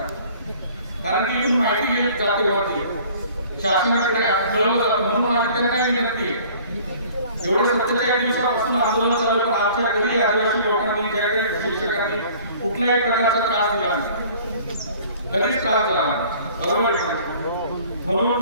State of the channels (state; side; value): inverted; both; correlation -0.51